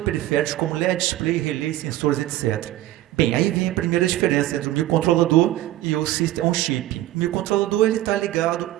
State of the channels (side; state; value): left; quieter; 15.0 dB